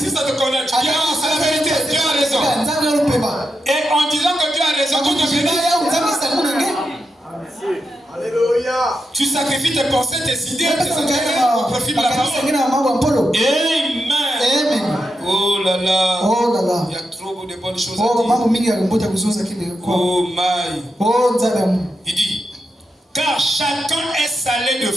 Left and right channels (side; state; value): both; normal; correlation 0.87